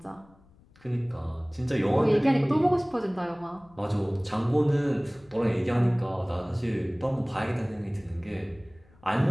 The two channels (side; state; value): left; noise; rumble, 28 dB below the sound